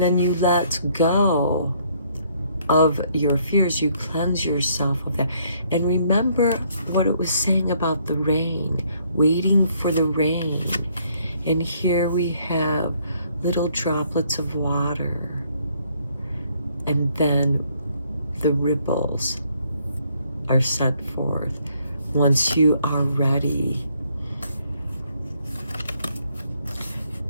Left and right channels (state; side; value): inverted; both; correlation -0.67